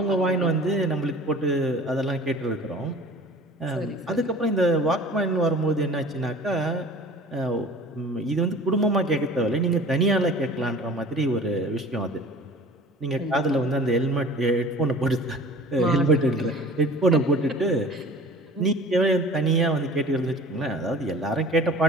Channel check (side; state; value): both; normal; correlation 0.44